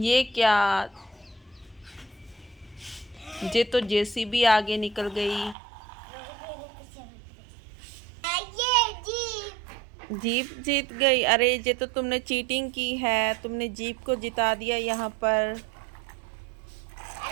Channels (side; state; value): left; drops out; at 5.6 s